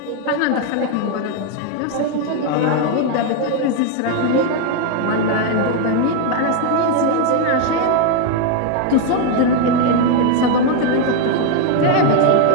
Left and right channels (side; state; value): both; different; correlation 0.01